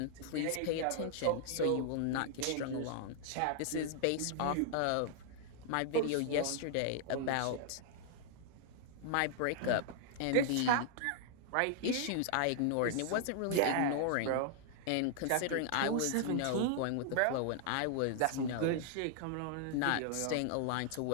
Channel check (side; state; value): both; different; correlation -0.01